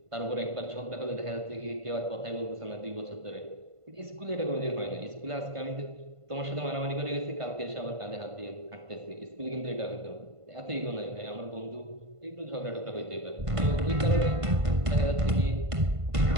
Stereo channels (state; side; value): late; left; 1.5 ms